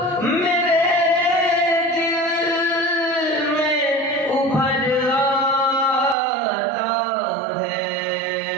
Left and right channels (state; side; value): drops out; left; at 6.2 s